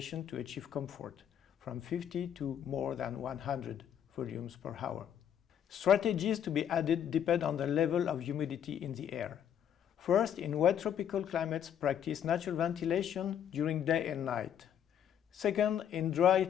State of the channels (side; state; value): right; quieter; 9.4 dB